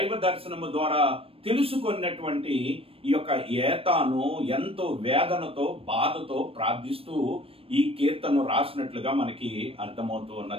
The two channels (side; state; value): left; late; 0.28 ms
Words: దర్శనము ద్వారా తెలుసుకున్నటువంటి ఈ యొక్క ఏతాను ఎంతో వేదనతో బాధతో ప్రార్థిస్తూ ఈ కీర్తనను రాసినట్లుగా మనకి అర్థమవుతూ